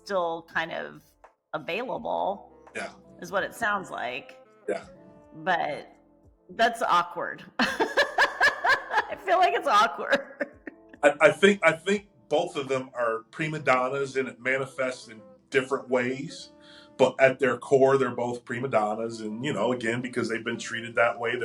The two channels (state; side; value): identical; both; correlation 1.00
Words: kind of available. Yeah. Is what it sounds like. Yeah. But that's awkward. I feel like it's awkward. I think both of them are prima donnas, and it manifests in different ways. but at their core, they're both prima donnas, and again, because they've been treated that way,